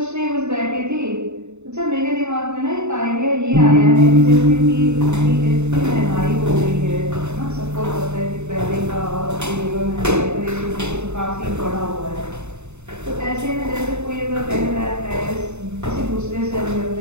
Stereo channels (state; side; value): late; left; 0.82 ms